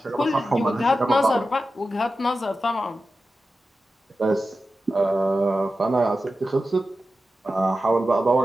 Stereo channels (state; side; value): normal; both; correlation 0.92